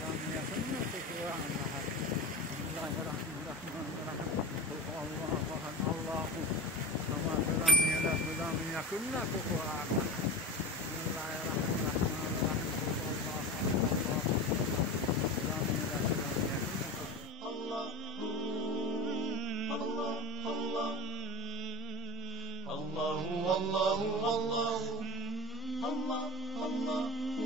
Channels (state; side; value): normal; both; correlation 0.29